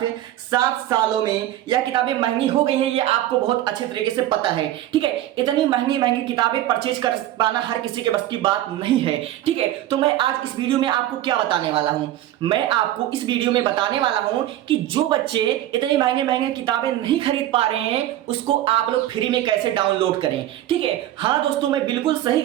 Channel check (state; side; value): quieter; left; 13.5 dB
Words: 7 सालों में यह किताबें महंगी हो गई हैं। ये आपको बहुत अच्छे तरीके से पता है। ठीक है, इतनी महंगी महंगी किताबें परचेज कर पाना हर किसी के बस की बात नहीं है। ठीक है, तो मैं आज इस वीडियो में आपको क्या बताने वाला हूं, मैं आपको इस वीडियो में बताने वाला हूं कि जो बच्चे इतनी महंगे महंगे किताबें नहीं खरीद पा रहे हैं उसको आप लोग फ्री में कैसे डाउनलोड करें। ठीक है, हाँ दोस्तों, मैं बिल्कुल सही